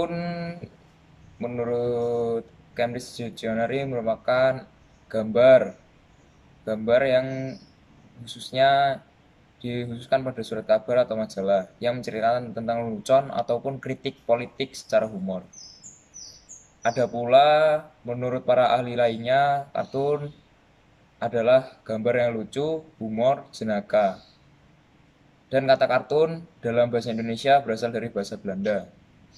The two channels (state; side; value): identical; both; correlation 1.00